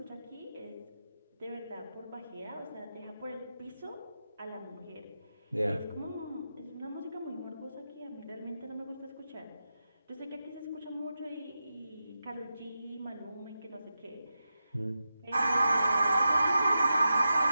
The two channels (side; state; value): both; inverted; correlation -0.89